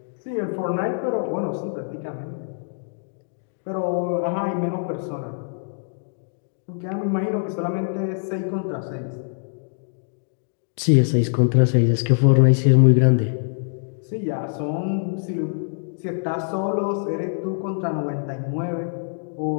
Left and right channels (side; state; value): right; silent; digital silence